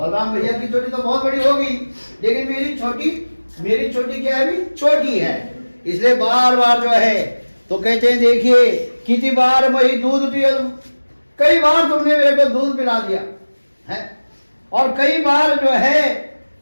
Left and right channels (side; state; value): both; inverted; correlation -1.00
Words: भैया की चोटी तो बहुत बड़ी होगी, लेकिन मेरी चोटी क्या है, अभी छोटी है, इसलिए बार बार जो है तो कहते हैं देखिए कितनी बार वही दूध पिया, कई बार तुमने मेरे को दूध पिला दिया है, और कई बार जो है